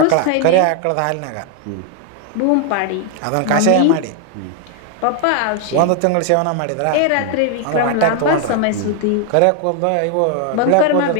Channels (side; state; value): both; different; correlation 0.00